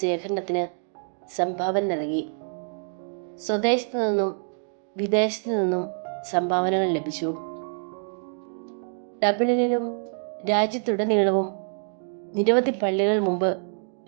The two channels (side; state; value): left; silent; 61 dB below the other